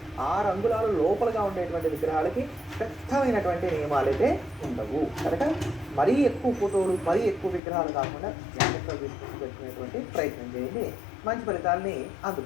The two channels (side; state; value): right; drops out; at 7.6 s